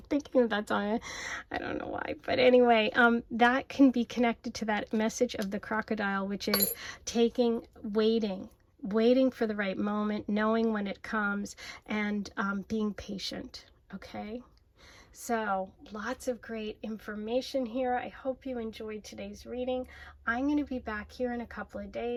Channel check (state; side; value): identical; both; correlation 1.00